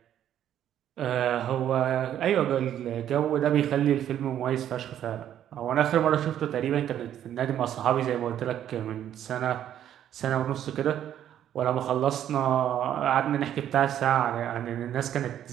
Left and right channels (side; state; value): left; quieter; 10.7 dB